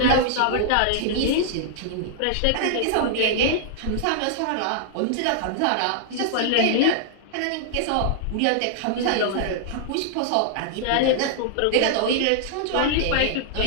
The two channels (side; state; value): both; different; correlation -0.01